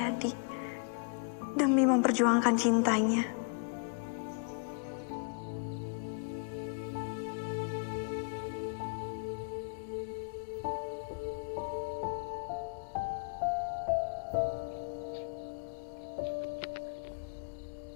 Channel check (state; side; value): quieter; right; 38.6 dB